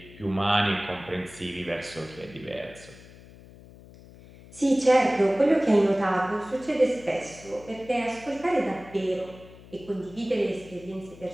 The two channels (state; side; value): noise; left; hum, 20 dB below the sound